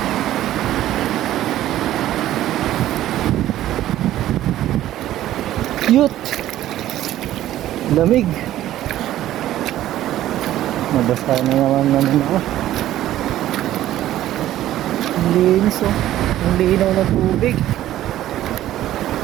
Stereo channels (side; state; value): left; quieter; 13.5 dB